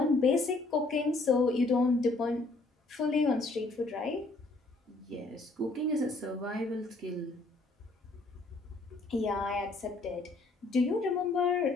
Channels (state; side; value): quieter; right; 3.2 dB